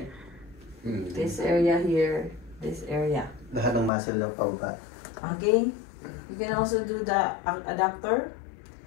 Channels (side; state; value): right; drops out; at 3.9 s